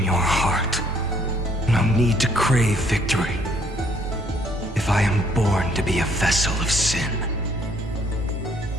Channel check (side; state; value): both; normal; correlation 0.65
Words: your heart. No need to crave victory. If I am born to be a vessel of sin,